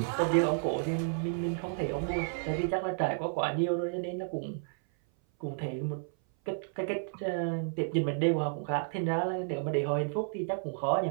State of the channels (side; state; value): left; silent; 57 dB below the other